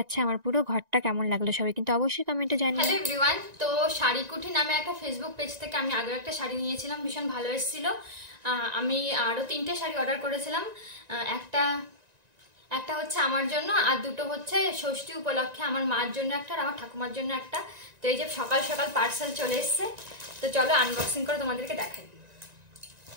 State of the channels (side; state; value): left; late; 1.9 ms